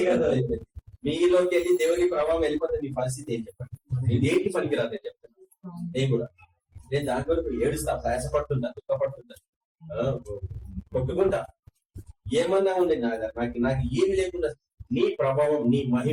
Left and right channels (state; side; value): identical; both; correlation 1.00